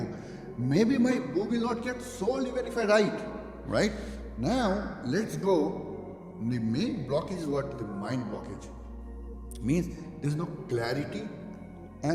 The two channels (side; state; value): both; identical; correlation 1.00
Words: Maybe my book will not get sold even if I write, right? Now, let's go. The main blockage is what? The mind blockage. Means there's no clarity